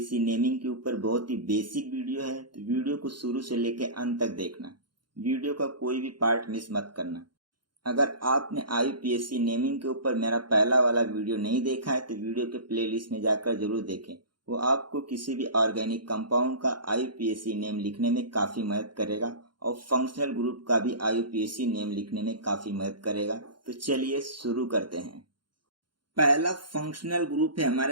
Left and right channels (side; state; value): left; late; 0.71 ms